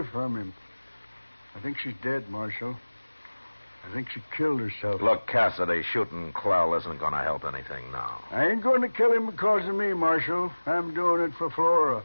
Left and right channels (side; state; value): both; inverted; correlation -1.00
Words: from him. I think she's dead, Marshal. I think she killed herself. Look, Cassidy, shooting Clell isn't going to help anything now. I ain't going to kill him because of me, Marshal. I'm doing it for Flora.